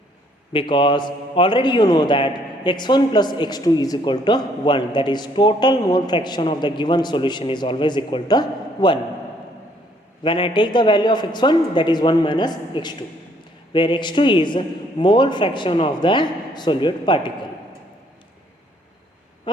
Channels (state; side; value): normal; both; correlation 0.65